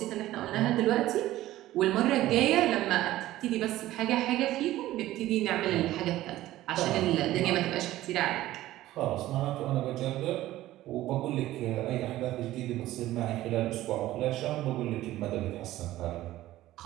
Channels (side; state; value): left; quieter; 15.3 dB